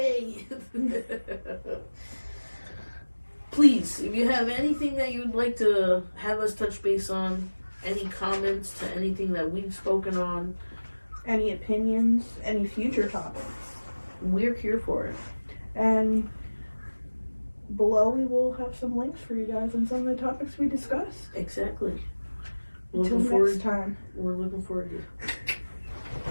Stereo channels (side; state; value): both; inverted; correlation -1.00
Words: Please, if you have anything that you'd like to have us touch base on, any comments to anything that we've spoken on, any opinions, any future topics, we're here for it. And below we will have some links for you guys on some of the topics we discussed. Exactly. Until next time. We're looking forward to